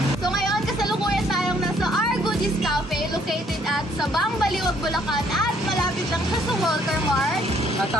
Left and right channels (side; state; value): both; normal; correlation 0.65